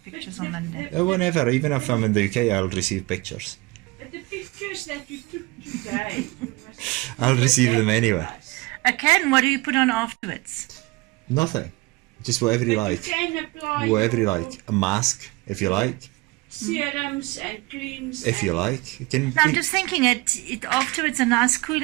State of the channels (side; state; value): left; quieter; 23.2 dB